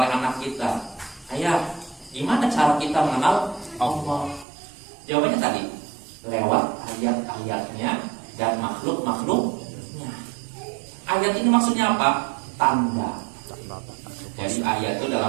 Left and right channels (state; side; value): drops out; left; at 4.5 s